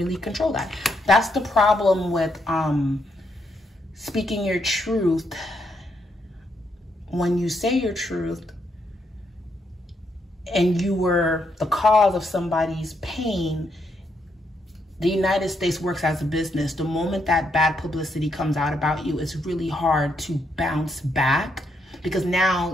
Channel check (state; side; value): normal; both; correlation 0.77